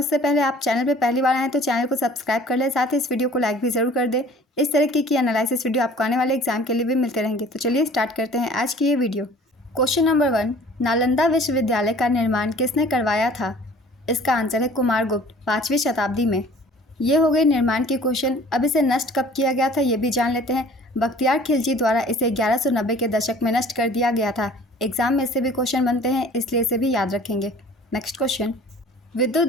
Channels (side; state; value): both; normal; correlation 0.49